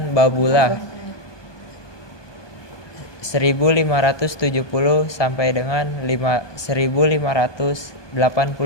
Babullah 1570 sampai dengan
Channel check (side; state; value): right; late; 1.2 ms